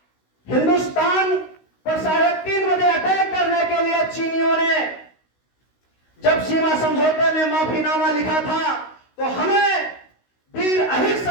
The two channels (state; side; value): late; right; 16 ms